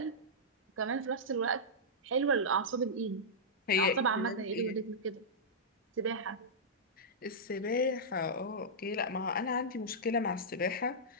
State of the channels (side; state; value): both; normal; correlation -0.11